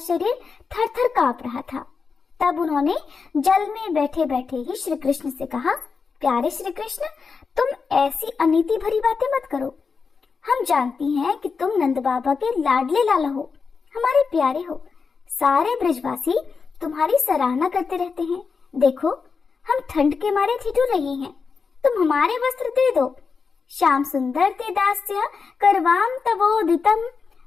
थर थर कांप रहा था। तब उन्होंने जल में बैठे बैठे ही श्री कृष्ण से कहा, प्यारे श्री कृष्ण, तुम ऐसी अनीति भरी बातें मत करो। हम जानती हैं कि तुम नंद बाबा के लाडले लाला हो, हमारे प्यारे हो। सारे ब्रजवासी तुम्हारी सराहना करते रहते हैं। देखो, हम ठंड के मारे ठिठुर रही हैं, तुम हमारे वस्त्र दे दो। श्याम सुंदर ते दास्य करवाम तवोदितम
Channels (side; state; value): right; quieter; 5.2 dB